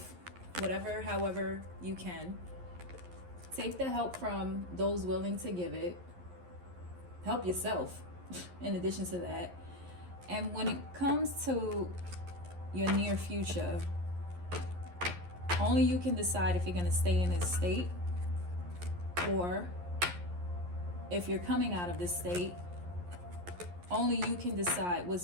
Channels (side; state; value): left; late; 11 ms